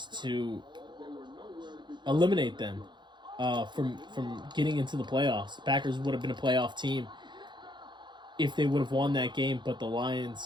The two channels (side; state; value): left; late; 0.22 ms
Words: to eliminate them from getting into the playoffs. The Packers would have been a playoff team if they would have won that game, but the